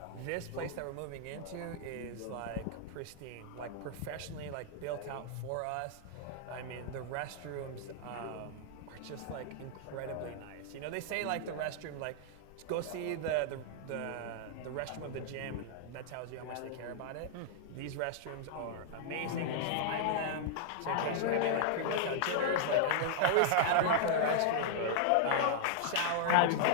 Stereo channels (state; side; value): different; both; correlation -0.01